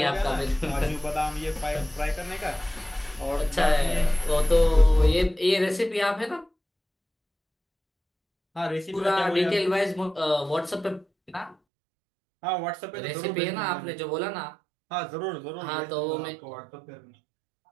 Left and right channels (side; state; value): left; drops out; at 11.6 s